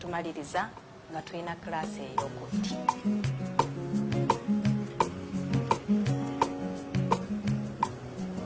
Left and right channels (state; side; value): identical; both; correlation 1.00